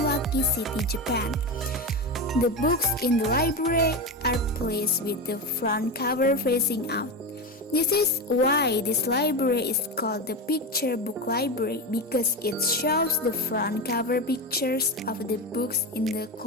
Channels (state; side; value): normal; both; correlation 0.18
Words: City, Japan. The books in the library are placed with the front cover facing out. This is why this library is called the Picture Book Library, because it shows the front cover pictures of the books in the